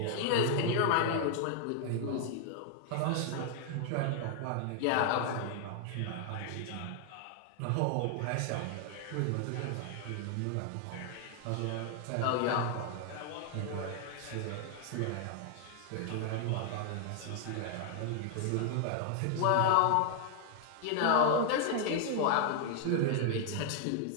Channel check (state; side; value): different; both; correlation 0.00